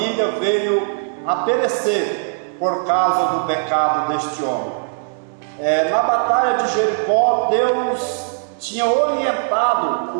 veio a perecer por causa do pecado deste homem. Na batalha de Jericó, Deus tinha orientado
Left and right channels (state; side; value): silent; left; 64 dB below the other